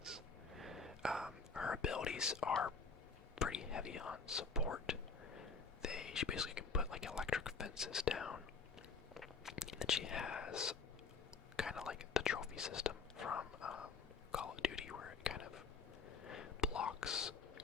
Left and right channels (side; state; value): right; quieter; 4.8 dB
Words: Her abilities are pretty heavy on support. She basically can put like electric fences down. And then she has kind of like the trophy system from Call of Duty, where it kind of blocks